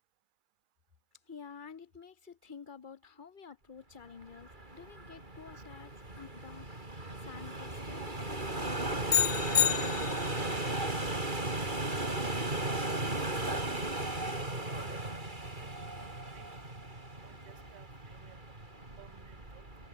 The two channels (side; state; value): left; late; 2.3 ms